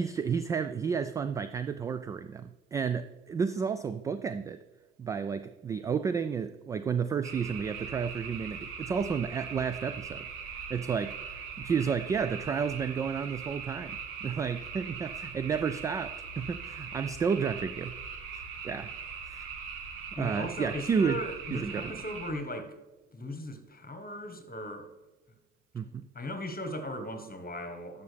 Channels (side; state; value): left; quieter; 5.4 dB